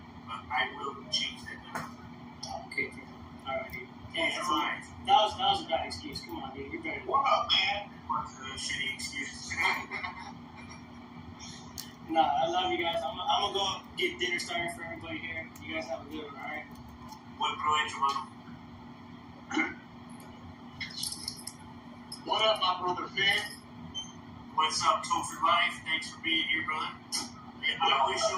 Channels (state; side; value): identical; both; correlation 1.00